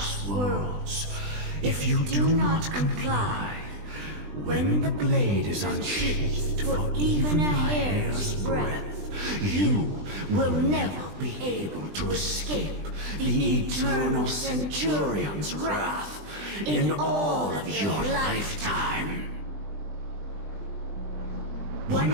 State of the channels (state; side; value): late; left; 20 ms